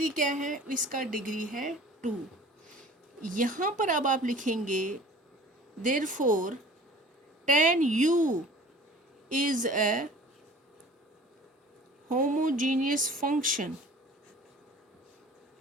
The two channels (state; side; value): normal; both; correlation 0.46